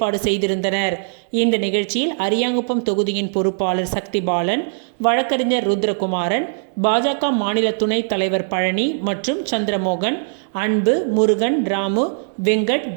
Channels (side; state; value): left; silent; digital silence